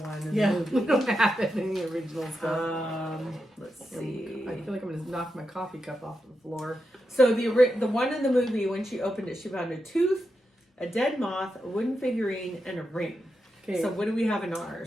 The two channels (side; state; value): both; normal; correlation 0.87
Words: In Yeah, the movie. we don't have any original stuff. Let's see. I feel like I'm going to knock my coffee cup off the floor. So the one in the movie, when she opened it, she found a tooth, a dead moth, a wooden figurine, and a ring. Okay. So what do we have in